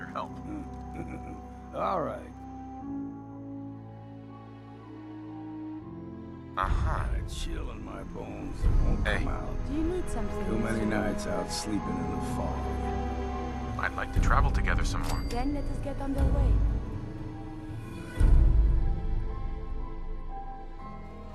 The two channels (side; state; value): both; identical; correlation 1.00